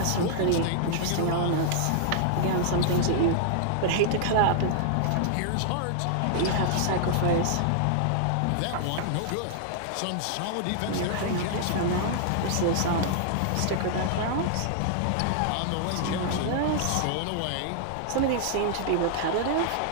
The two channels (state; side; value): different; both; correlation -0.01